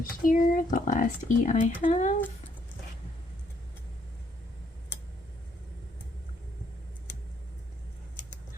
here, the last E I have.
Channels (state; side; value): normal; both; correlation 0.70